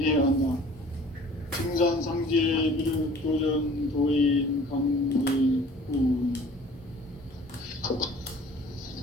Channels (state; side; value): normal; both; correlation 0.49